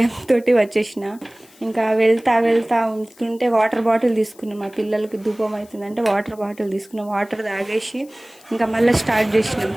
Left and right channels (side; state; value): left; noise; hiss, 26 dB below the sound